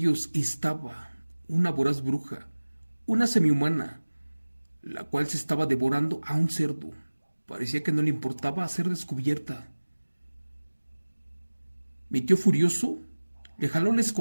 estaba una voraz bruja, una semihumana, la cual se estaba devorando a un cerdo. Parecía que no le importaba ser descubierta. Mi tío furioso le jaló la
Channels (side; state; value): both; inverted; correlation -1.00